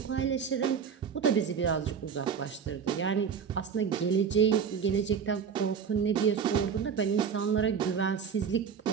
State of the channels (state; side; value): quieter; left; 6.9 dB